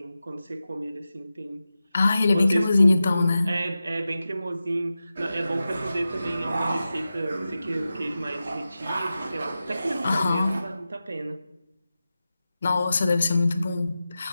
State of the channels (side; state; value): both; inverted; correlation -0.93